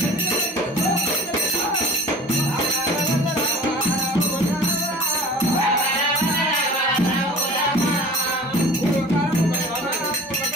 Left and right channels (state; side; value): normal; both; correlation 0.41